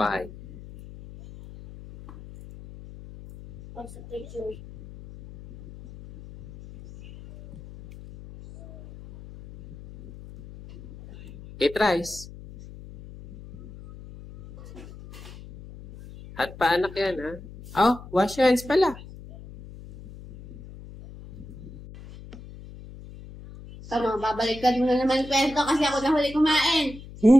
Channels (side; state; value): left; noise; hum, 17 dB below the sound